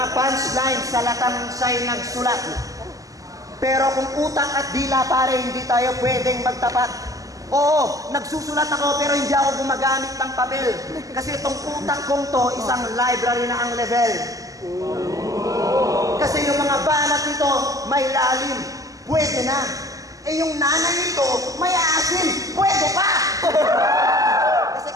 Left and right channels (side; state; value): left; late; 0.17 ms